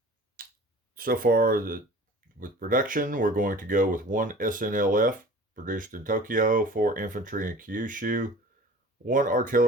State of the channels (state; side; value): normal; both; correlation 0.43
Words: so far, with production, we're going to go with one SNLF produced in Tokyo, 4 infantry in Kyushu, 1